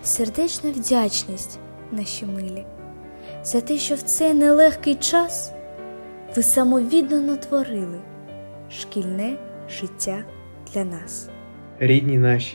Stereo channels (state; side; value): inverted; both; correlation -1.00